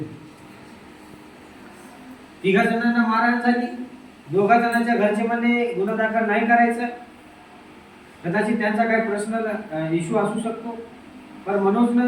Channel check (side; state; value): both; identical; correlation 1.00